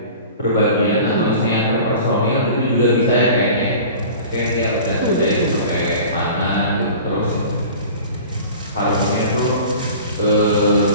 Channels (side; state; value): both; inverted; correlation -0.40